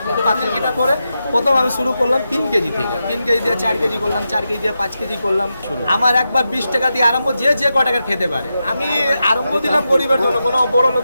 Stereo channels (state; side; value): inverted; both; correlation -0.89